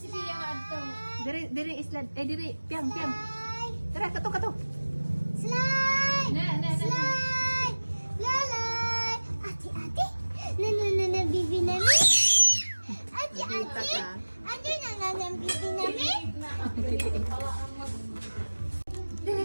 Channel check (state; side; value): inverted; both; correlation -1.00